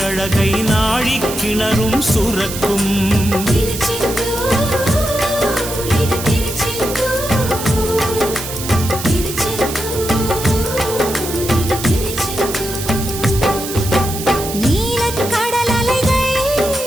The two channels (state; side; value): noise; right; hiss, 8 dB below the sound